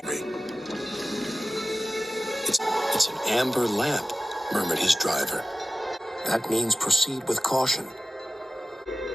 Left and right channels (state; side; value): normal; both; correlation 0.94